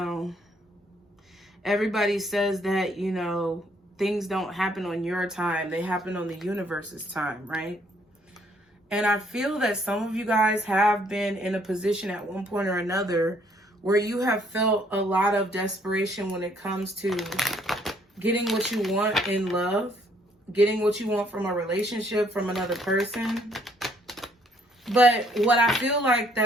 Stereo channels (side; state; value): both; normal; correlation 0.66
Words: Everybody says that, you know, things don't happen on your time. They happen on the universe's time, right? And I feel that some of you guys have been in a position at one point or another where you have felt a lot of desperation when it comes to getting what you want in love, getting what you want from a relationship, from another person. But what I feel like